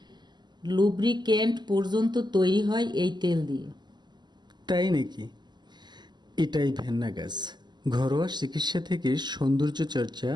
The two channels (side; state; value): left; late; 0.21 ms